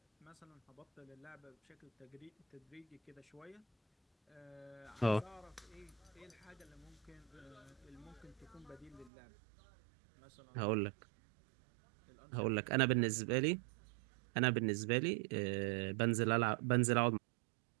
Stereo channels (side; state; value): left; drops out; at 9.1 s